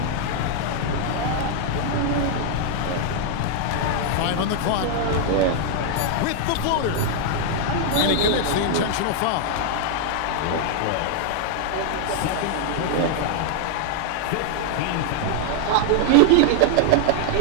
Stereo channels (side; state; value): both; different; correlation 0.00